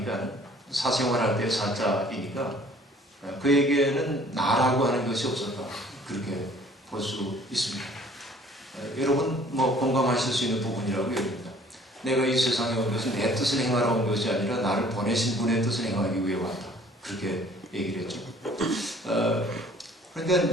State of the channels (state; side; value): normal; both; correlation 0.55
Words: 사생활할 때 사자이니까 그에게는 나라고 하는 것이 없었다. 그렇게 볼 수 있습니다. 여러분 뭐 공감하실 수 있는 부분이라고 여깁니다. 내가 이 세상에 온 것은 내 뜻을 행하러 온 것이 아니라 나를 보내신 분의 뜻을 행하기 위해 왔다. 그렇게 얘기를 했죠.